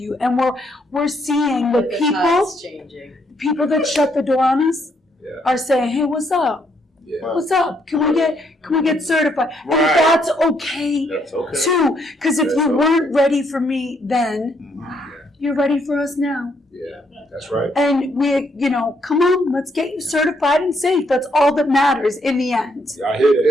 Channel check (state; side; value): normal; both; correlation 0.72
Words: And we're seeing the time's changing. people that shut the door on us are saying, "Hey, what's up? Yeah. What's up? Can we get certified?" And Right. that's okay. That's okay. Too, because if you weren't ready for me then, you're ready for us now. Yeah, that's right. And come on, let's get you certified and safe. That's all that matters in the end. I hear